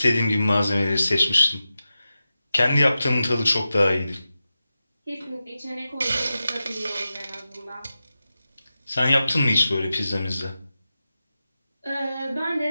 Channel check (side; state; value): both; inverted; correlation -0.92